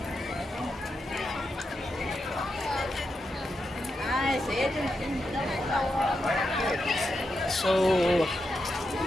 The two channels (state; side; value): normal; both; correlation 0.86